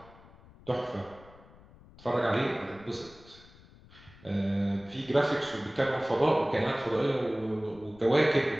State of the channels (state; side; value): noise; left; rumble, 23 dB below the sound